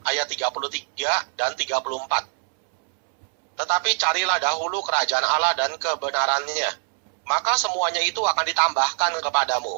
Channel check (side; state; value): left; silent; 63 dB below the other